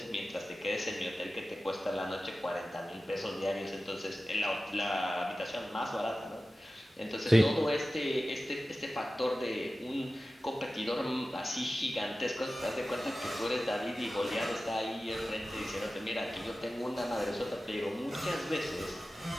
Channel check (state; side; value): normal; both; correlation 0.95